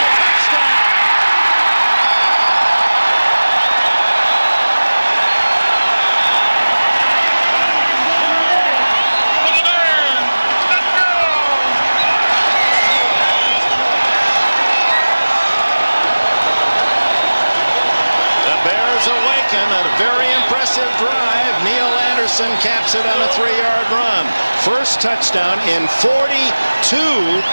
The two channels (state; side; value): inverted; both; correlation -1.00